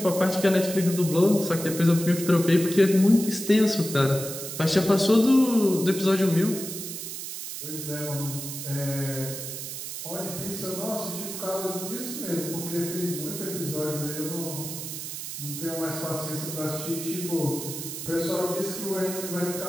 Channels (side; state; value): right; noise; hiss, 7 dB below the sound